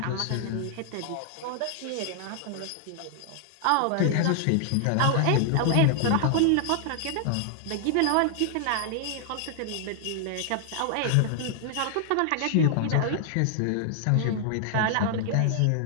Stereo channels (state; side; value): different; both; correlation 0.00